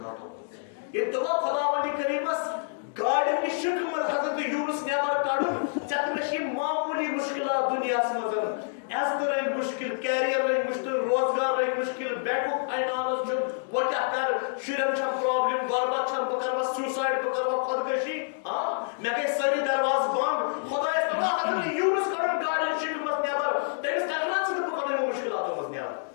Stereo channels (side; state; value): right; silent; digital silence